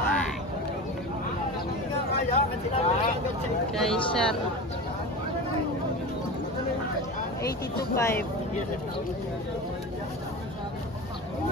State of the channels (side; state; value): both; normal; correlation 0.29